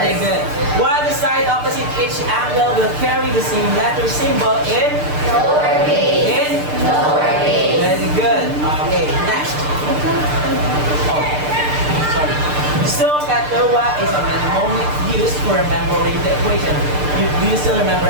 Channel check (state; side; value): late; left; 6.7 ms